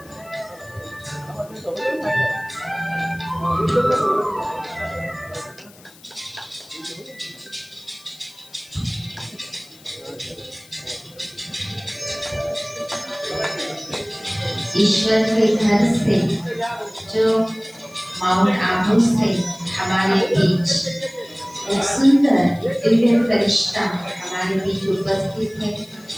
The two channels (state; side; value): noise; left; hiss, 24 dB below the sound